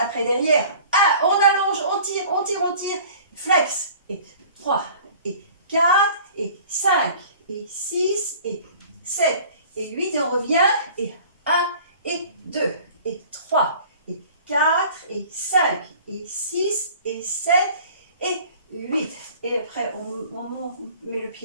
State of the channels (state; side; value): inverted; both; correlation -0.47